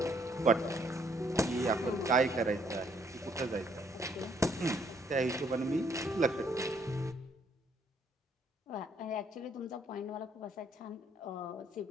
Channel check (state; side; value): normal; both; correlation 0.68